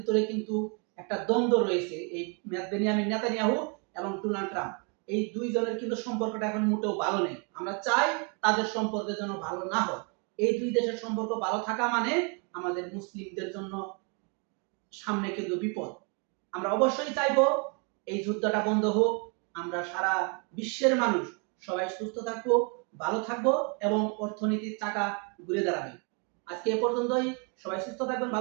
কিন্তু একটা দ্বন্দ্ব রয়েছে, এই বেনিয়ামিন নেতানিয়াহু এবং ডোনাল্ড ট্রাম্প, এই দুইজনের কিন্তু সম্পর্কটা এখন মোটেও ভালো নেই। আমরা চাই তাদের সম্পর্ক যেন ভালো না হয়। এই দুই দেশের সম্পর্ক ভালো থাকা মানে আমাদের মুসলিমদের জন্য সামনে কিন্তু বিপদ। আমরা অবশ্যই চাইবো এই যুদ্ধটা বন্ধ হোক, আমরা সারা বিশ্বের মানুষ সবাই সুস্থ থাকবো, ভালো থাকবো, এবং অর্থনীতির চাকা ঘুরে দাঁড়াবে। আজকে এ পর্যন্তই। সবাই সুস্থ থাকবেন,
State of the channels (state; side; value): quieter; left; 35.7 dB